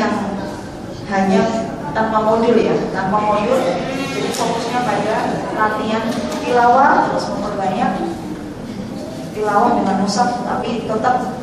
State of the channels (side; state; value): both; identical; correlation 1.00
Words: hanya tanpa modul ya, tanpa modul. Jadi fokusnya pada latihan tilawah, terus memperbanyak tilawah dengan mushaf, tapi tetap